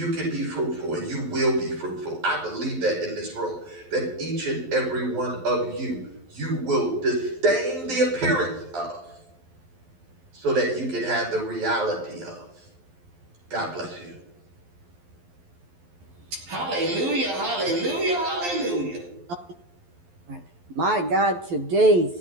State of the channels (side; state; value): left; late; 12 ms